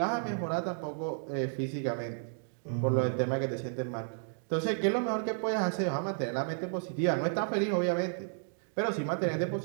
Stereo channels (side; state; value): left; silent; digital silence